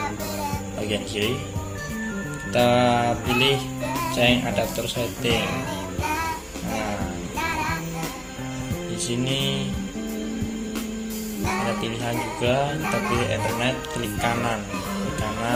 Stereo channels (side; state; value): both; identical; correlation 1.00